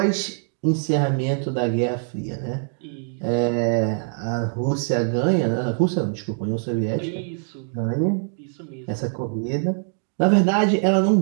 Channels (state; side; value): silent; left; 63 dB below the other